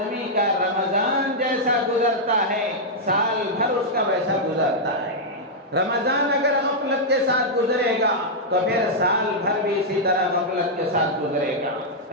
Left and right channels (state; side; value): normal; both; correlation -0.06